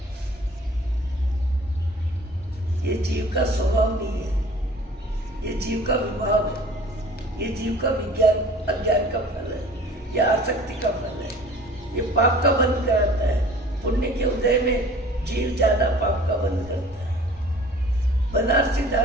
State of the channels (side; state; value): both; normal; correlation 0.47